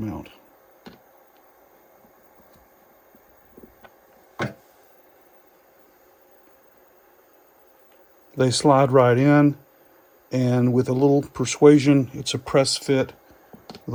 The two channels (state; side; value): identical; both; correlation 1.00